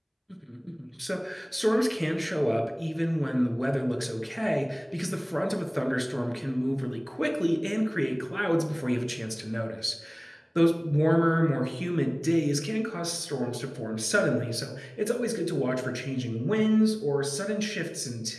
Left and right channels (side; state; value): both; identical; correlation 1.00